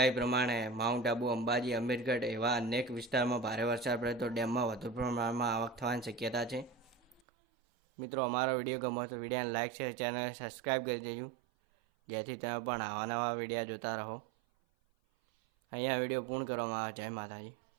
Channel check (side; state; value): left; drops out; at 7.2 s